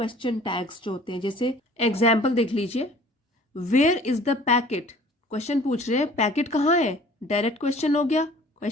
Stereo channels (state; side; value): normal; both; correlation 0.50